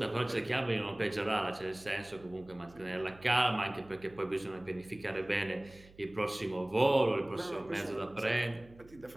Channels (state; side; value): noise; right; hum, 23 dB below the sound